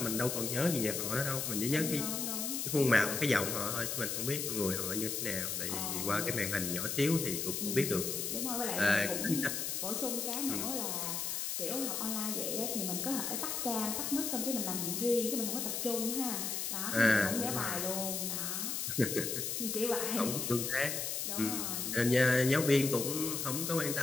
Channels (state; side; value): noise; left; hiss, 2 dB below the sound